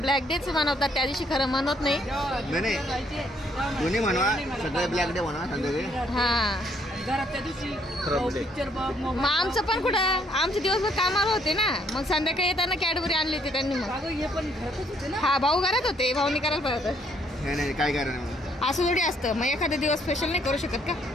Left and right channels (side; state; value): both; normal; correlation 0.68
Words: डेच मनवतात, त्या दिवशी खरं म्हणत नाही. नाही दोन्ही म्हणवा, सगळे ब्लॅक डे म्हणा संध्याकाळी. हा घरात त्या दिवशी पिक्चर बघ. मग आमचं पण कुठं, आमचे दिवसभर कामाला होते ना, मग संध्याकाळी येताना कॅडबरी आणली होती त्यांनी. मग हे पण घरातच होते ना. हा भाऊ घरात होते, भाऊनी करायला पाहिजे. नाही काय कारण असं थोडी असतं, मग एखादा दिवस स्पेशल नाही करू शकत का?